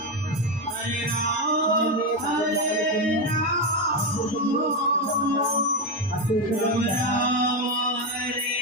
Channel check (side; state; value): both; normal; correlation 0.10